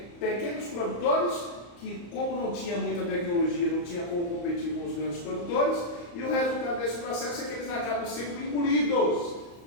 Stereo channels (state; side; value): late; right; 34 ms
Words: pequenos produtores que, como não tinha muita tecnologia, não tinha como competir com os grandes produtores, e o resultado desse processo é que eles acabam sendo engolidos